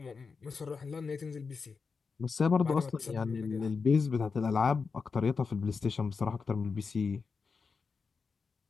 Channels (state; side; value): quieter; right; 5.0 dB